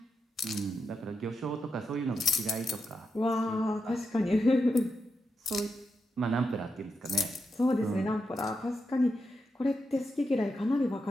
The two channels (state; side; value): normal; both; correlation 0.86